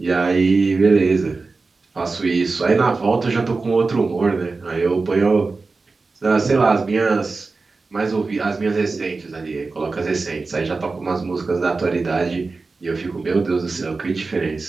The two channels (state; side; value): quieter; left; 4.0 dB